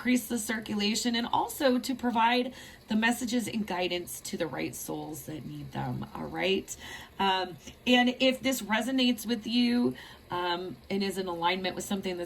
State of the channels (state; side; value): identical; both; correlation 1.00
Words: the circulation and also to provide the messages and guidance to the right souls that need them. All right. And if this resonates with you and is in alignment with something